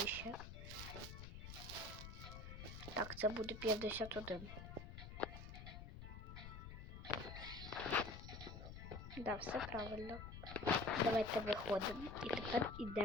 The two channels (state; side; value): noise; left; rumble, 10 dB below the sound